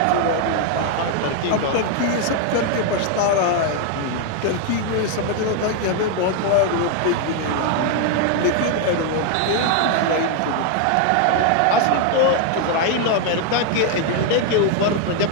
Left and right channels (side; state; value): both; different; correlation 0.00